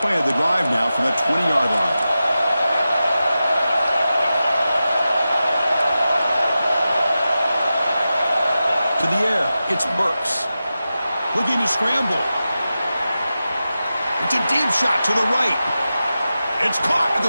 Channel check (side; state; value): both; inverted; correlation -0.93